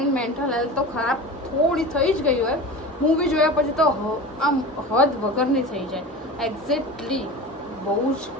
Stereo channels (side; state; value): both; normal; correlation 0.32